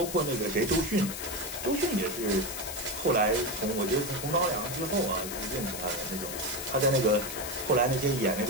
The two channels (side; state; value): left; noise; hiss, 7 dB below the sound